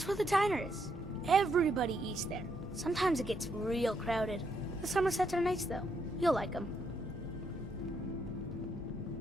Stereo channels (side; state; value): both; normal; correlation 0.76